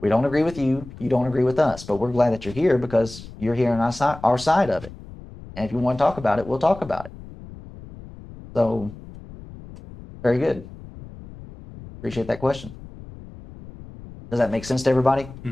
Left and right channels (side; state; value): left; noise; rumble, 16 dB below the sound